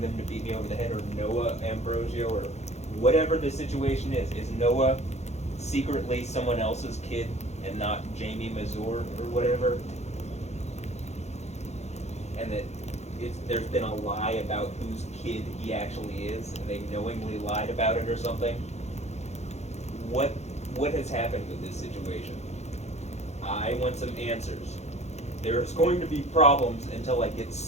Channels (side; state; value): right; late; 0.32 ms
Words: them to beat me over the head? Or Noah Ambrosio, or whatever the situation is Noah secretly someone else's kid and not Jamie Mazur or whatever? And that there's been a lie about whose kid he actually is, and they knowingly lied about it or something? What has happened with this situation? I want some answers. There's going to be problems until I get